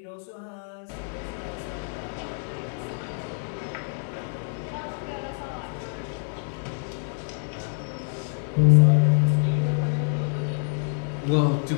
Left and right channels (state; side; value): silent; right; 60 dB below the other